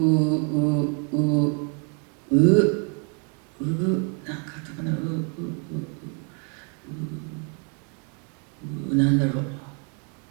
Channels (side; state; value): left; quieter; 38.6 dB